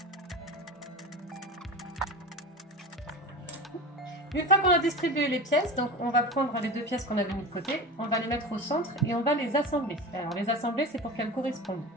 Une fois qu'on a distribué les pièces, donc on va prendre les 2 pièces qu'on avait mis de côté, on va les mettre au centre et on va les assembler. Alors les assembler, c'est pour qu'elles correspondent,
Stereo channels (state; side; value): normal; both; correlation 0.29